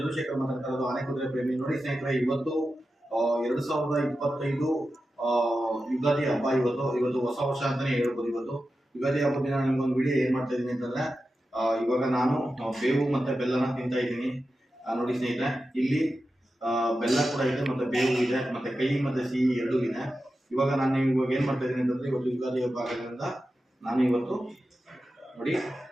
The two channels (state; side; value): normal; both; correlation 0.91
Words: ಮಾತಾಡ್ತಾ ಇರೋದು ಆನೆಕುದುರೆ ಪ್ರೇಮಿ. ನೋಡಿ ಸ್ನೇಹಿತರೆ, ಇವತ್ತು 2025 ಯುಗಾದಿ ಹಬ್ಬ. ಇವತ್ತು ಹೊಸ ವರ್ಷ ಅಂತಾನೆ ಹೇಳ್ಬೋದು. ಇವತ್ತು ಯುಗಾದಿ ಹಬ್ಬದ ದಿನ ನಿಮ್ಗೊಂದು ವಿಡಿಯೋ ಏನ್ ಮಾಡ್ತಾ ಇದೀನಿ ಅಂತಂದ್ರೆ, ಇವಾಗ ನಾನು ಬೇವು ಮತ್ತೆ ಬೆಲ್ಲನ ತಿಂತಾ ಇದ್ದೀನಿ. ನೋಡಿ ಸ್ನೇಹಿತರೆ, ಇಲ್ಲಿ ಬೆಲ್ಲ ಕೂಡ ಇದೆ, ಮತ್ತೆ ಬೇವು ಇದೆ, ಮತ್ತೆ ಕಹಿ ಮತ್ತೆ ಸಿಹಿ ಎರಡೂ ಇದೆ. ಇವಾಗ ನಾನು ಇವಾಗ ಏನ್ ಮಾಡ್ತಾ ಇದ್ದೀನಿ ಅಂತಂದ್ರೆ, ಇವತ್ತು ಯುಗಾದಿ ಹಬ್ಬ ಆಗೋದ್ರಿಂದ ನಾನು ಇವತ್ತು ನೋಡಿ